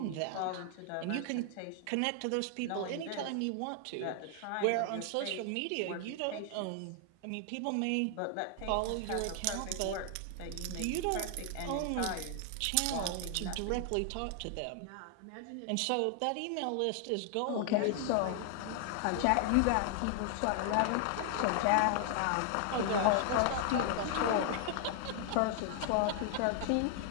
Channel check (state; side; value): different; both; correlation 0.00